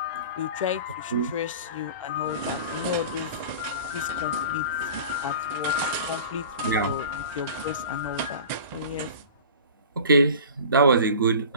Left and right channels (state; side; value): inverted; both; correlation -0.39